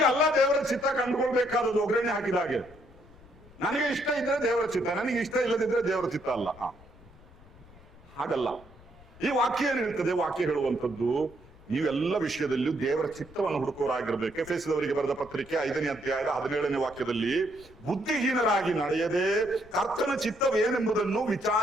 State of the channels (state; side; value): noise; left; rumble, 23 dB below the sound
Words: ಅಲ್ಲ ದೇವರ ಚಿತ್ತ ಕಂಡುಕೊಳ್ಬೇಕಾದದ್ದು ಒಗ್ಗರಣೆ ಹಾಕಿದ ಹಾಗೆ. ನನಗೆ ಇಷ್ಟ ಇದ್ರೆ ದೇವರ ಚಿತ್ತ, ನನಗೆ ಇಷ್ಟ ಇಲ್ಲದಿದ್ರೆ ದೇವರ ಚಿತ್ತ ಅಲ್ಲ. ಹಾಗಲ್ಲ. ಈ ವಾಕ್ಯ ಏನ್ ಹೇಳ್ತದೆ? ವಾಕ್ಯ ಹೇಳುವಂಥದ್ದು ನೀವೆಲ್ಲ ವಿಷಯದಲ್ಲಿಯೂ ದೇವರ ಚಿತ್ತವನ್ನು ಹುಡುಕೋರಾಗಿರ್ಬೇಕು. ಎಫೆಸದವರಿಗೆ ಬರೆದ ಪತ್ರಿಕೆ 5ನೇ ಅಧ್ಯಾಯದ 17ನೇ ವಾಕ್ಯದಲ್ಲಿ, ಬುದ್ಧಿಹೀನರಾಗಿ ನಡೆಯದೆ ಕರ್ತನ ಚಿತ್ತವೇನೆಂಬುದನ್ನು